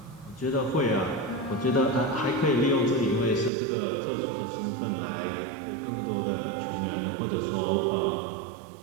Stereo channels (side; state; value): left; drops out; at 3.5 s